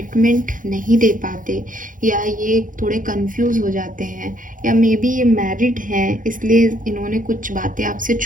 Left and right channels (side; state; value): left; late; 0.39 ms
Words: नहीं दे पाते, या ये थोड़े कंफ्यूज हो जाते हैं, या मे बी ये मैरिड हैं इसलिए इन्होंने कुछ बातें आपसे